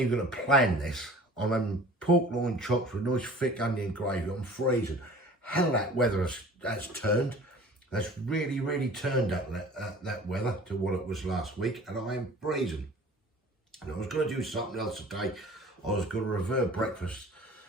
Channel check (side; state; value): both; normal; correlation 0.45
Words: even going to plan this. I'm having pork loin chops with nice thick onion gravy. I'm freezing. Hell, that weather has turned. That's really turned up that weather to what it was last week, and I am freezing. And I was going to do something else today. I was going to revert breakfast